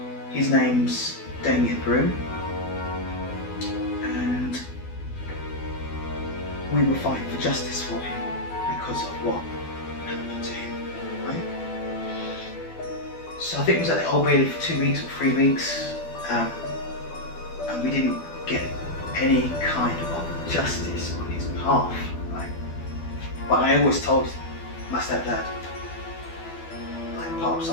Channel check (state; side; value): late; right; 12 ms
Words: His name's Damien Broome, and we were fighting for justice for him because of what happened to him, right? So I think it was at the Old Bailey for 2 weeks or 3 weeks, and we didn't get any kind of justice on his behalf, right? But I always told my stepdad, like Pops, I